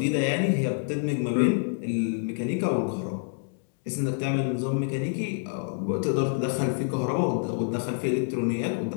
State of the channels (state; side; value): silent; right; digital silence